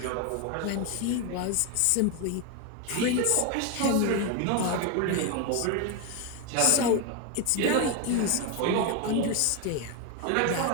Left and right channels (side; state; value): both; different; correlation 0.01